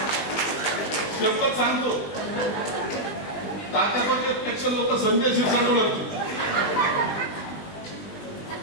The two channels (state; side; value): late; right; 20 ms